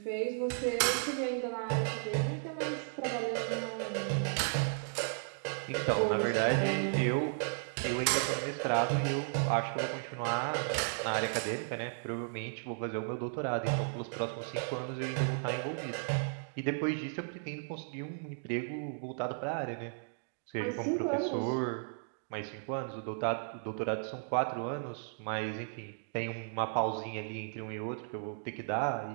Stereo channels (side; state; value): left; silent; digital silence